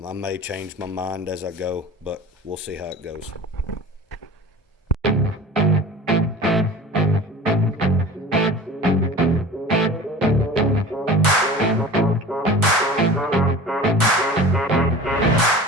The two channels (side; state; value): both; normal; correlation 0.38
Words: may change my mind as I go, but we'll see how it goes.